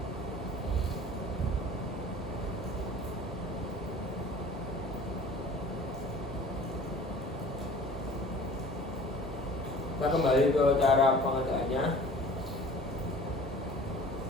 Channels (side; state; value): both; normal; correlation 0.46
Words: Kita kembali ke cara pengerjaannya.